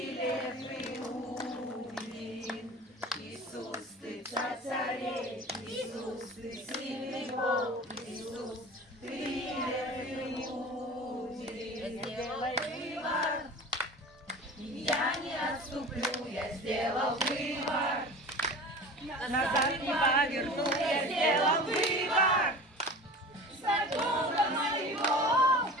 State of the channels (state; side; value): normal; both; correlation 0.37